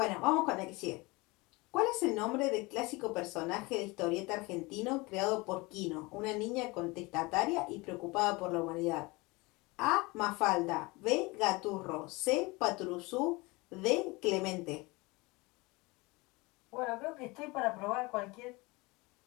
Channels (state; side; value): quieter; right; 24.3 dB